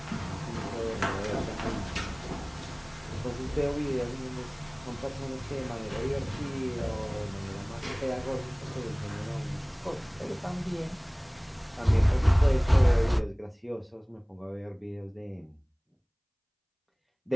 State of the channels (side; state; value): both; identical; correlation 1.00